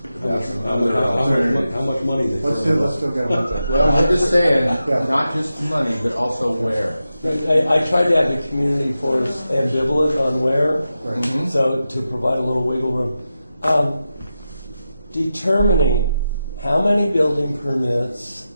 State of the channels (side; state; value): both; inverted; correlation -0.90